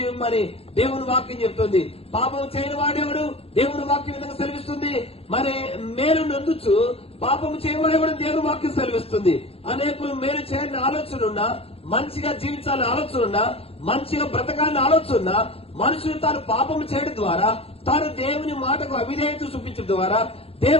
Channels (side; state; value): right; late; 0.28 ms